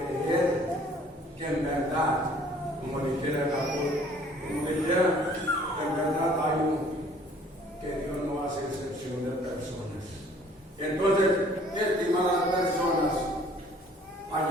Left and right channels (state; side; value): normal; both; correlation 0.56